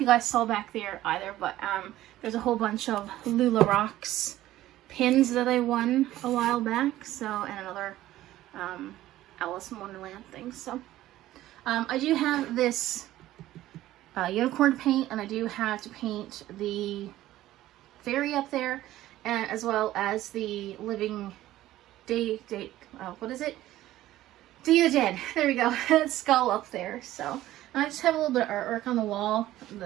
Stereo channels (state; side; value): quieter; left; 14.7 dB